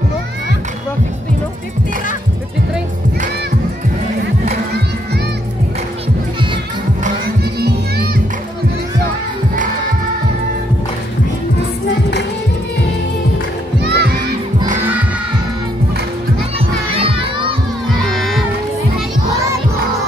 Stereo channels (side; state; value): both; normal; correlation 0.73